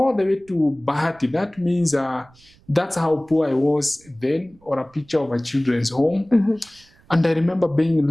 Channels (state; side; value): noise; right; rumble, 29 dB below the sound